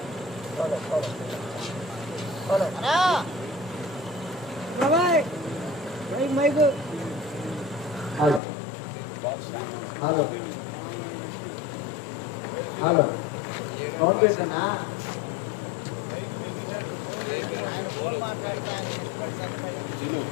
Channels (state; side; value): drops out; right; at 8.4 s